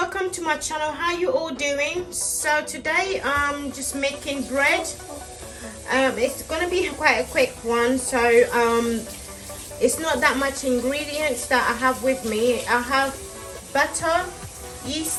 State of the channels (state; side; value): identical; both; correlation 1.00